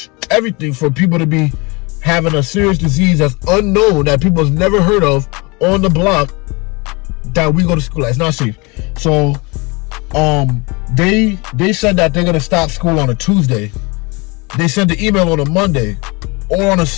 everything for people to be having a serious disease that's unknown, that people have never heard of on the block that we go to school at. It's not safe. So they said that they're gonna stop school on a Tuesday. They sent the email on a Monday or on a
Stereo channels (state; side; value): quieter; right; 27.3 dB